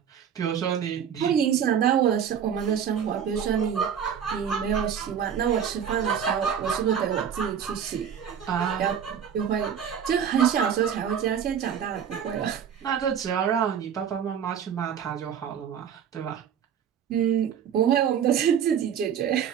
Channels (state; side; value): quieter; left; 8.2 dB